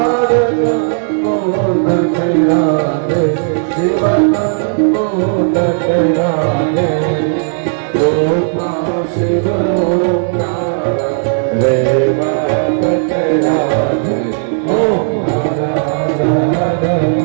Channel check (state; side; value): silent; left; digital silence